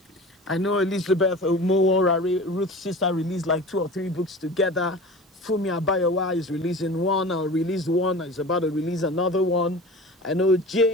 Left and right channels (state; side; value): normal; both; correlation 0.36